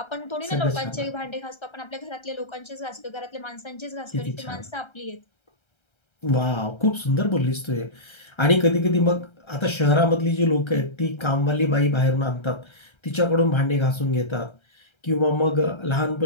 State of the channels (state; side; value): late; right; 1.3 ms